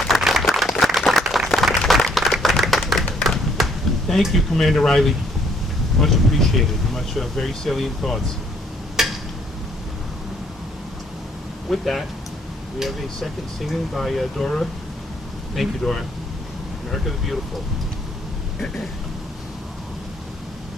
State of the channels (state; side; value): normal; both; correlation 0.65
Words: Thank you, Commander Riley. Much appreciated. Very salient thoughts. With that, we have a second singing by Dora. Thank you, Dora. America the Beautiful.